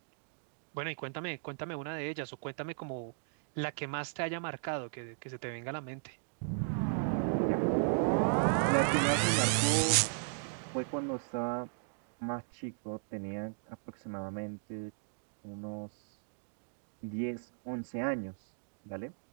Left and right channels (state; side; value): silent; left; digital silence